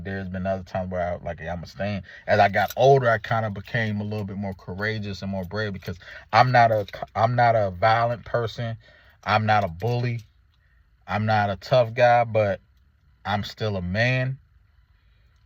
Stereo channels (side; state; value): both; identical; correlation 1.00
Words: there's been other times where I'm gonna stand. As I got older, I kind of became a little bit more courageous and more brave because I'm not a violent person. I'm not a bully. I'm not a tough guy, but I'm still a man,